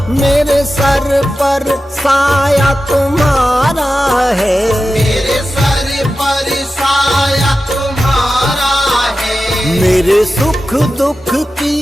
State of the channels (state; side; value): normal; both; correlation 0.93